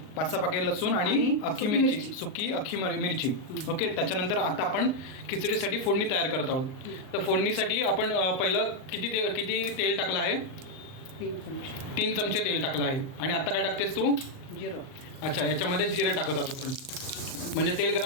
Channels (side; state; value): right; late; 38 ms